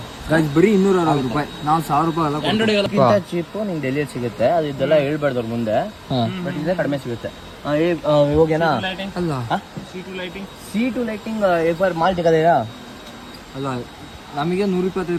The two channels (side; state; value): both; identical; correlation 1.00